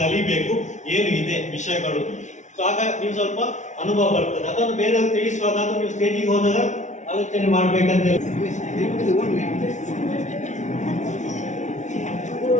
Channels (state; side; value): late; right; 0.35 ms